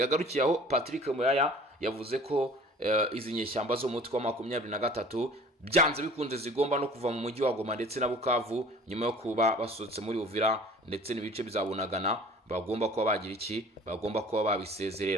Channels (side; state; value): both; normal; correlation 0.47